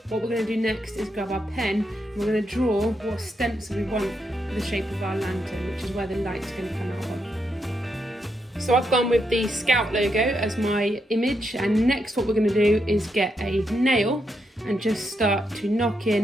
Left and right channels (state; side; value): normal; both; correlation 0.81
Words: What we're going to do next is grab our pen and we're going to draw what stencil we want for the shape of our lantern, which is where the light's going to come out of. So I've gone with the Scout logo as my image, and next what we're going to do is get a nail and just start to knock